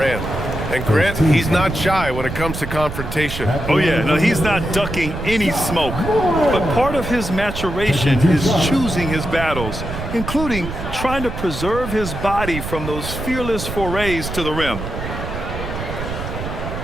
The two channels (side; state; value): right; noise; rumble, 7 dB below the sound